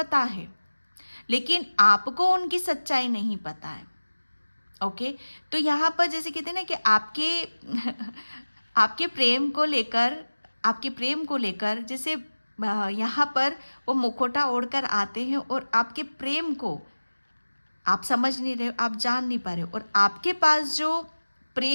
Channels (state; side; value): inverted; both; correlation -1.00